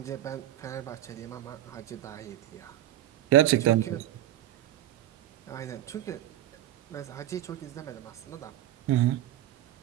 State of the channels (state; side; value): quieter; left; 13.1 dB